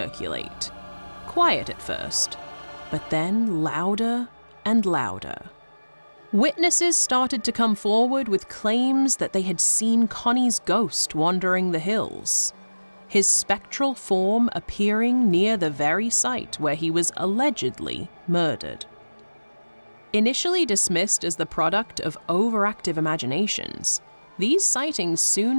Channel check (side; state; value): both; inverted; correlation -1.00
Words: quiet at first, but then louder and louder. Witnesses started to come forward with claims that they had seen Connie's ghost wandering the hills, his spectral form appearing near the very site where he was allegedly murdered. Initially dismissed as the product of overactive imaginations, these sightings